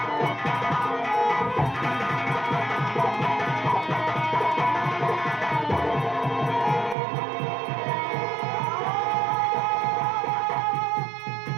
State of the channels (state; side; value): drops out; left; at 7.0 s